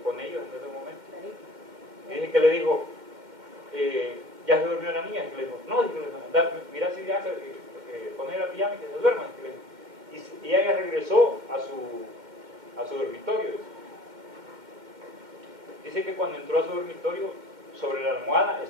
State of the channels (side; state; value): left; late; 2.1 ms